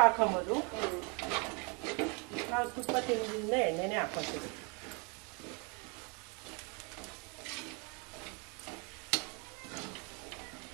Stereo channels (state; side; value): quieter; left; 33.0 dB